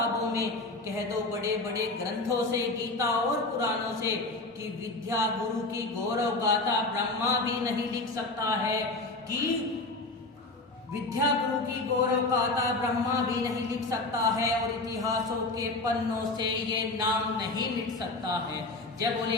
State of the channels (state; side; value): quieter; right; 3.1 dB